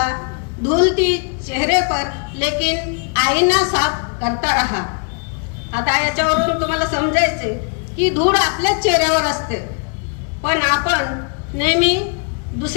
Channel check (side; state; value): right; quieter; 39.3 dB